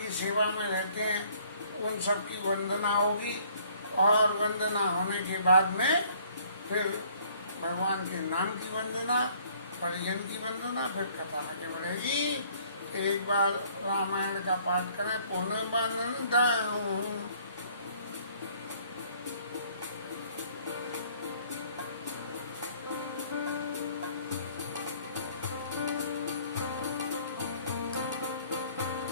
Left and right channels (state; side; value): inverted; both; correlation -0.59